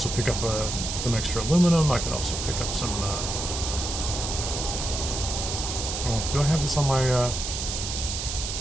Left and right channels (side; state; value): right; noise; hiss, 4 dB below the sound